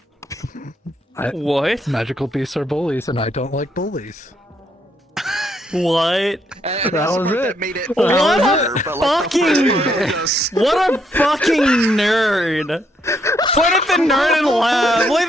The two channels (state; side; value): normal; both; correlation 0.74